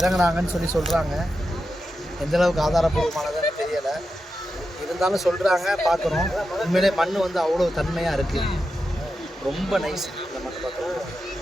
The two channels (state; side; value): normal; both; correlation 0.89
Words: சொல்கிறாங்க. எந்தளவுக்கு ஆதாரப்பூர்வமானதுன்னு தெரியலை, இருந்தாலும் சொல்கிறாங்க, பார்க்குறோம். உண்மையிலே மண் வந்து அவ்வளோ தன்மையாக இருக்குது, ரொம்ப நைஸ். இந்த மண் பார்க்குறோம்